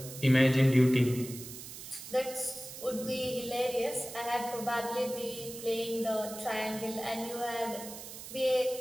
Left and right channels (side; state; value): right; noise; hiss, 12 dB below the sound